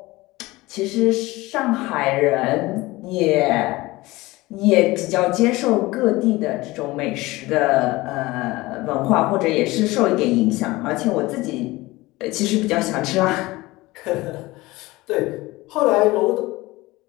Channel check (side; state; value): right; quieter; 20.3 dB